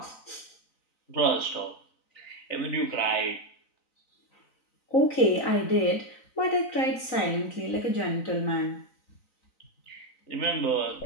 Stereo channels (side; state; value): right; late; 3.9 ms